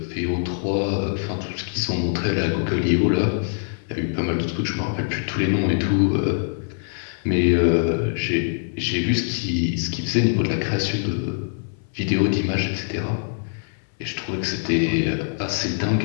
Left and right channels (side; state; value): right; silent; 63 dB below the other